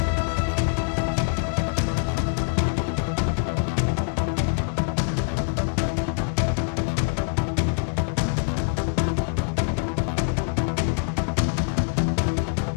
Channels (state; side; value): silent; right; 59 dB below the other